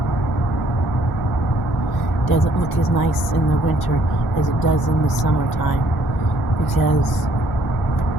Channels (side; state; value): both; normal; correlation 0.64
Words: Doesn't look as nice in the winter as it does in the summertime because